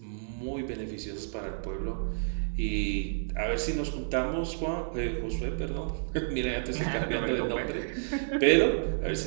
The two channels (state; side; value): silent; left; digital silence